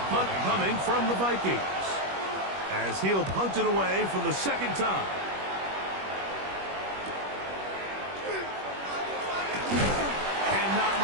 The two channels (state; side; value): late; left; 21 ms